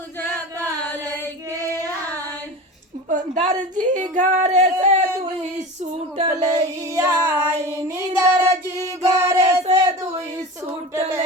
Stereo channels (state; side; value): normal; both; correlation 0.31